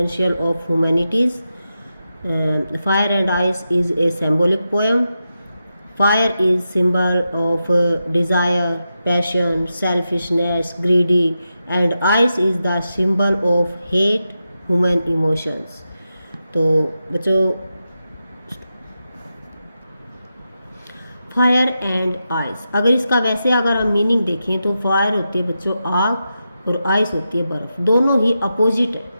of humanities. Fire and Ice is a symbolic poem. Fire is symbol of desire, passion, selfishness, greedy, and ice is the symbol of hate, human emotions. तो बच्चों, fire and ice, अगर इसका वैसे अगर हम meaning देखें तो fire होती है बच्चों आग और आइस होती है बर्फ़। दोनों ही अपोजिट है।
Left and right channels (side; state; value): both; inverted; correlation -0.89